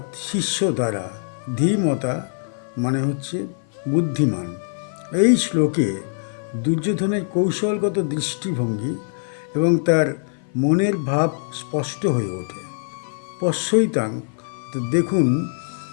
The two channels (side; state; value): right; silent; 56 dB below the other